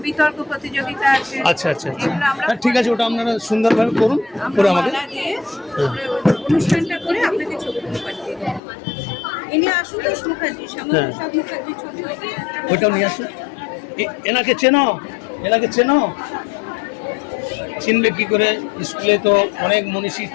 বিতর্ক প্রতিযোগিতা আছে। আচ্ছা আচ্ছা আচ্ছা এগুলো আমরা হ্যাঁ ঠিক আছে, ওটা আপনারা সুন্দরভাবে করুন, করে আমাকে মালা দিয়ে অনুষ্ঠানটা করে আপনাকে ছবিগুলো পাঠিয়ে দেব। ইনি আশুতোষ মুখার্জি, শ্যামাপ্রসাদ মুখার্জি ছবি। ওইটাও নিয়ে আসুন। এনাকে চেনো, এনাকে চেনো, চিনবে কি করে? স্কুলে তো অনেক মনীষীর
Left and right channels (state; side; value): drops out; right; at 8.6 s